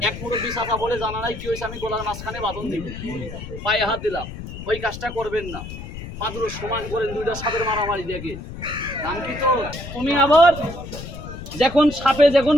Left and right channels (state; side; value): noise; left; rumble, 10 dB below the sound